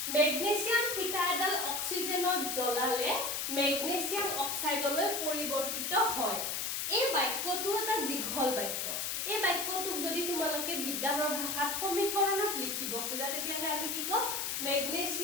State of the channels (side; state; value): left; noise; hiss, 1 dB below the sound